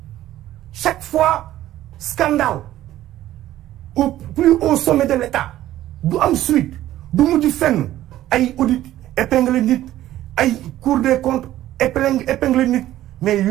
Chaque fois scandale au plus haut sommet de l'État du am suite du mujj fenn ay audit épingle nit ay Cour des comptes épingle nit mais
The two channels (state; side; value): quieter; left; 13.8 dB